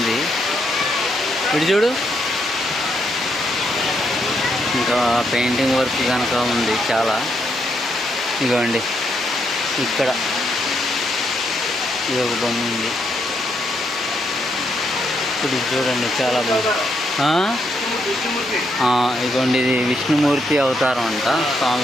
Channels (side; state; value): both; normal; correlation 0.77